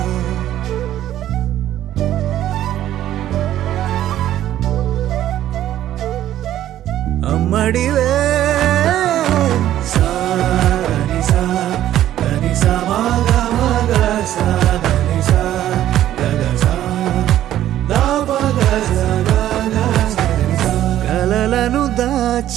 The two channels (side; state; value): left; quieter; 12.5 dB